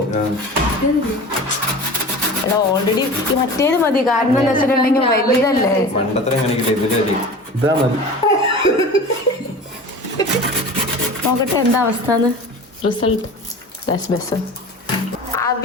ഓൾറെഡി മറ്റേത് മതി. കാരണം എന്താ വെച്ചിട്ടുണ്ടെങ്കിൽ വലുതല്ലേ. പണ്ടത്ര എങ്ങനെയൊക്കെ ഇതാ മതി. നോക്കട്ടെ എന്താ അവസ്ഥ. Result best.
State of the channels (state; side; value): normal; both; correlation 0.36